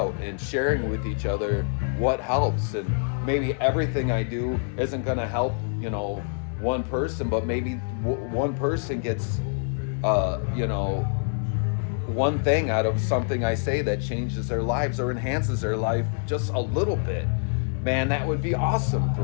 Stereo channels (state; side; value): silent; right; 61 dB below the other